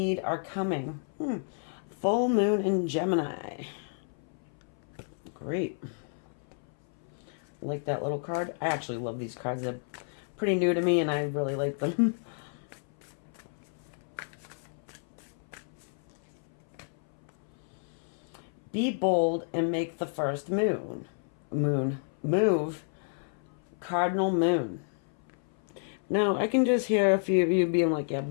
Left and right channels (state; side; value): silent; right; 57 dB below the other